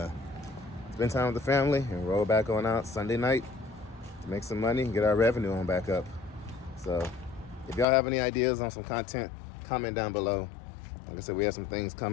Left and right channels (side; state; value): right; drops out; at 7.9 s